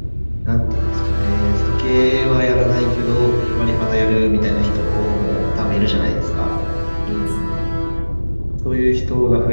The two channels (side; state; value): both; inverted; correlation -1.00